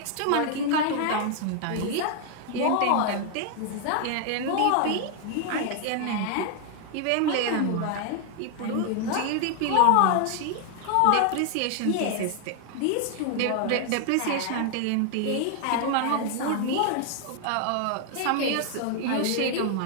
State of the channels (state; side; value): different; both; correlation 0.00